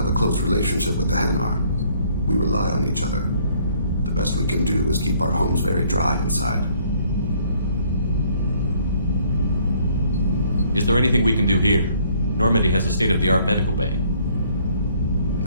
a close relationship with the Hanar. We rely on each other. The best we can do is keep our homes very dry inside. Is there anything we can do here? Normandy has a state-of-the-art medical bay.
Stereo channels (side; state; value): both; inverted; correlation -0.62